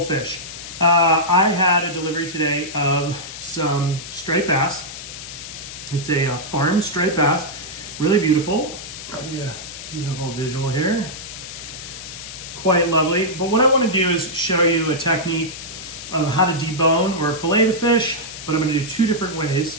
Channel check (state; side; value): noise; left; hiss, 11 dB below the sound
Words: fish. I had a delivery today of some straight bass. It's a farmed straight bass, really beautiful. I'll give you a beautiful visual here. Quite lovely. But what I wanna do is show you a technique of how to debone or fillet the fish, but I'm gonna do two different